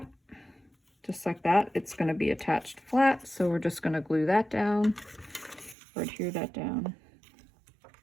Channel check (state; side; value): drops out; left; at 5.8 s